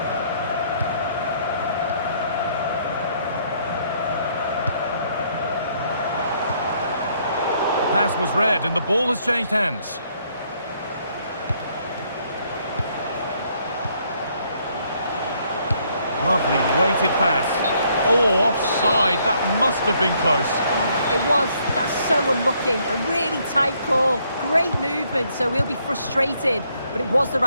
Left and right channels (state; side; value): inverted; both; correlation -0.69